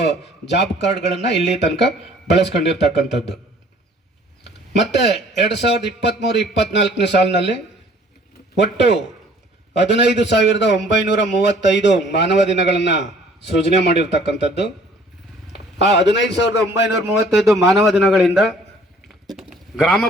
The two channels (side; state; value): both; normal; correlation 0.55